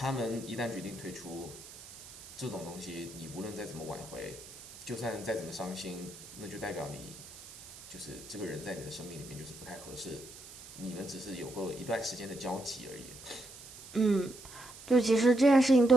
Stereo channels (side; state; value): right; noise; hiss, 16 dB below the sound